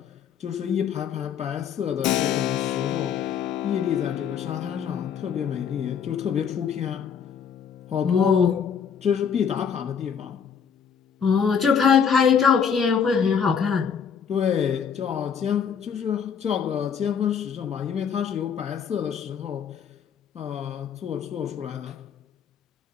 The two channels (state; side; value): quieter; right; 7.2 dB